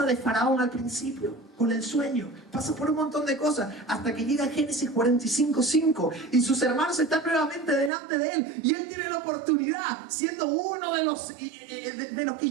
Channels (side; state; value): left; drops out; at 7.9 s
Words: de Faraón al principio, con el sueño. Pasa por un montón de cosas, hasta que llega Génesis 45:5 y sus hermanos están nuevamente delante de él. Y él tiene la oportunidad, siendo uno de los que